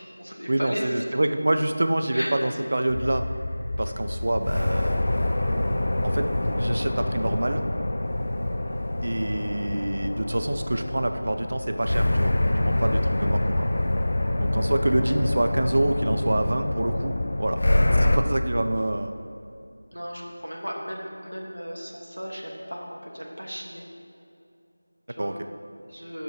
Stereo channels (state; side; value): inverted; both; correlation -0.98